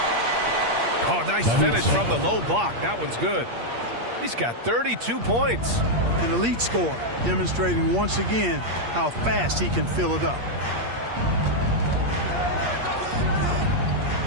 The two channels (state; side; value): late; left; 8.6 ms